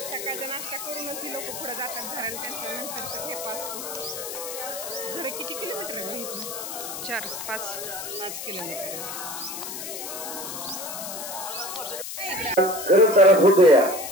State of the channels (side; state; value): left; noise; hiss, 7 dB below the sound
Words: सकाळचा नाश्ता करूनच ही लोक पुढे जातात घराला. त्यांचा नंतरचा ठेपा असतो. जरा किती किलोमीटर आहे इथून? 4-5 किलोमीटर.